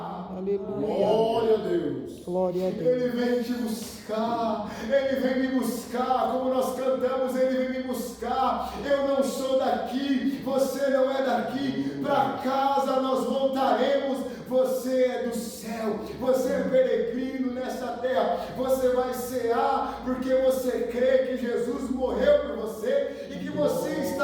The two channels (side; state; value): both; identical; correlation 1.00